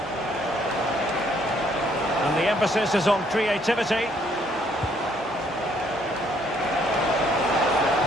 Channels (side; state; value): both; normal; correlation 0.67